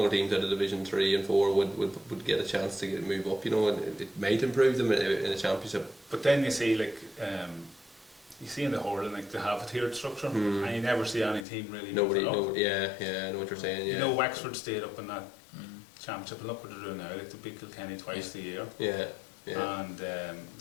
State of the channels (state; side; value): drops out; right; at 11.5 s